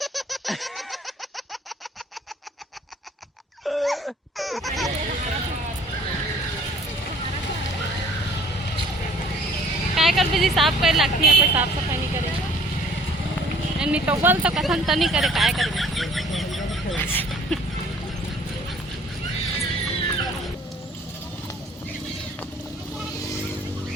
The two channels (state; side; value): normal; both; correlation 0.54